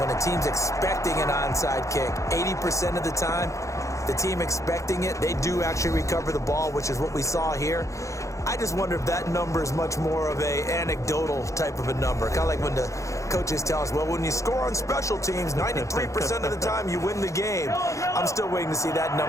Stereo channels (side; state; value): right; late; 0.15 ms